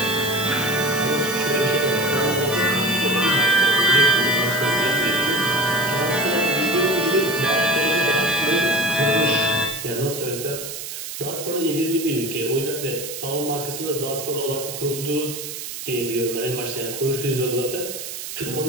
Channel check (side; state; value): right; noise; hiss, 8 dB below the sound